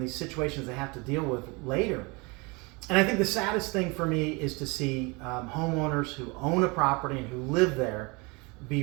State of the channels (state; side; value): quieter; left; 27.7 dB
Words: these situations they have to deal with later. And I think the saddest thing for me is to see homeowners who own a property and who live there be